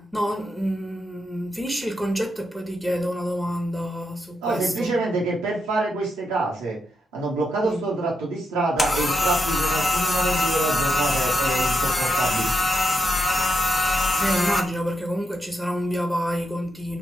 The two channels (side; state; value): both; normal; correlation 0.83